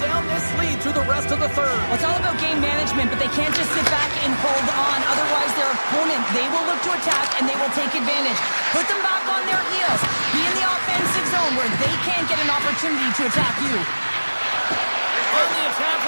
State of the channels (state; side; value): inverted; both; correlation -1.00